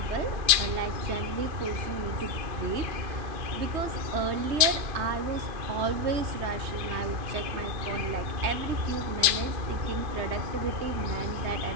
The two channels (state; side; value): late; left; 2.5 ms